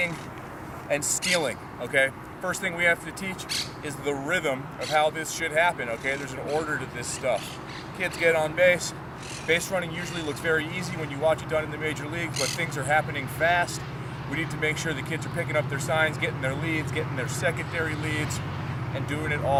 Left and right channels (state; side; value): identical; both; correlation 1.00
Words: and stealing, okay? First thing we have to teach is the rhythm of how this should happen, okay? There's an order to this stuff. Kids get on base. Base running usually looks very easy when you watch it done in the major leagues, but things are happening fast. We need to make sure the kids are picking up their signs, getting their leads, getting their secondary leads, and doing it